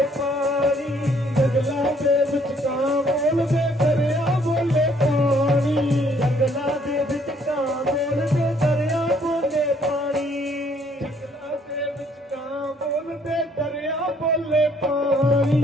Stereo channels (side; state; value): both; normal; correlation 0.64